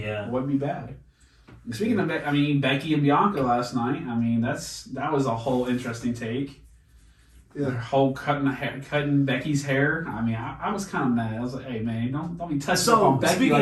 It wouldn't be bad. And speaking of, Becky and Bianca last night. That was a whole interesting take. Yeah. Their whole cutting Becky's hair. I was kind of mad. I was like, hey man, don't be touching up So on Becky speaking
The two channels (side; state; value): both; identical; correlation 1.00